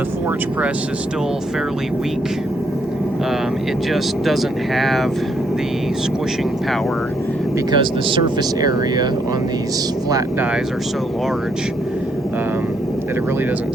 forge press is still fairly weak, it just doesn't have the squishing power because the surface area on these flat dies are so large that it really doesn't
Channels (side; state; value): both; normal; correlation 0.73